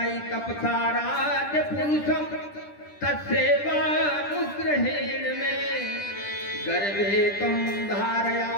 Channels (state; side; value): late; right; 10 ms